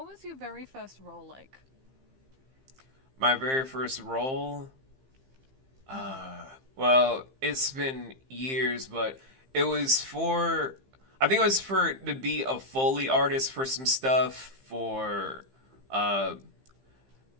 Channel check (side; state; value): left; late; 15 ms